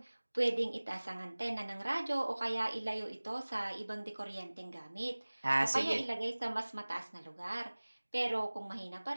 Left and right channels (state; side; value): inverted; both; correlation -1.00